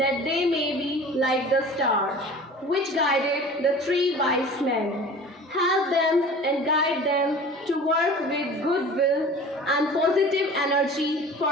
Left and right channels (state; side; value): normal; both; correlation 0.41